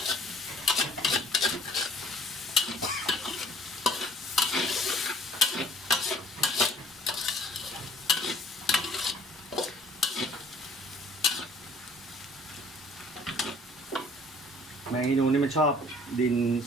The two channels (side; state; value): both; normal; correlation 0.55